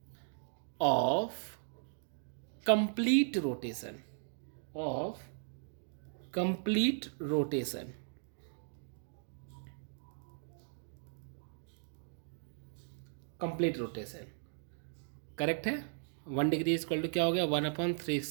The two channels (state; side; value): silent; left; digital silence